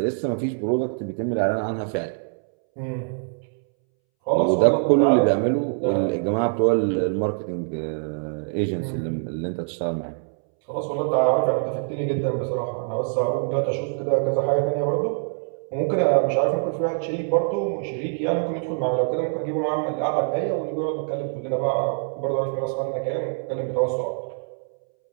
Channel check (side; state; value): left; silent; 62 dB below the other